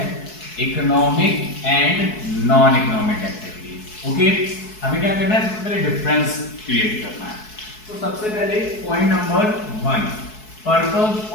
economic and non economic activities. Okay, हमें क्या करना है, सबसे पहले डिफरेंस क्रिएट करना है। तो सबसे पहले पॉइंट नंबर 1 पर्पस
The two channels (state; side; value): late; right; 4.7 ms